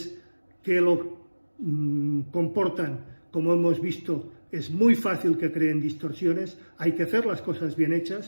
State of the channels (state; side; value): inverted; both; correlation -1.00